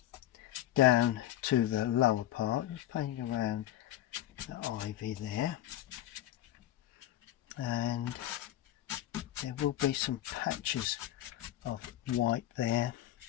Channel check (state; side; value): quieter; right; 13.1 dB